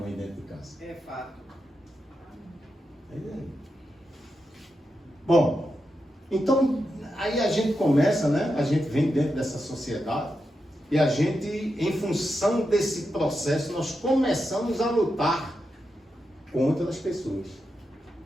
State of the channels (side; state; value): both; normal; correlation 0.87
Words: dentro de casa. É fato. Bom, então aí a gente começa, né? A gente vem dentro dessa sociedade e a gente, em função desse processo, nós começamos a lutar contra as pessoas.